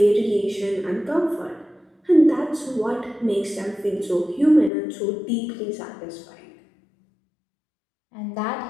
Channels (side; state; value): right; drops out; at 4.7 s